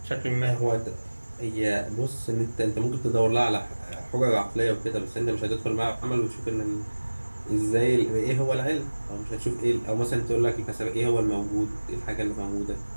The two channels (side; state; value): both; inverted; correlation -1.00